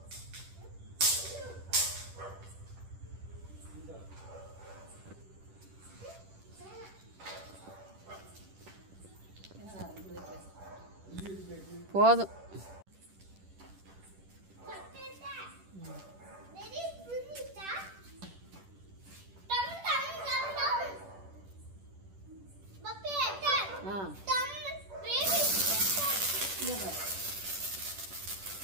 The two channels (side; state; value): left; late; 10 ms